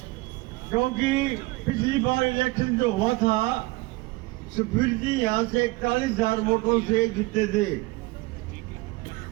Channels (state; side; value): quieter; left; 22.2 dB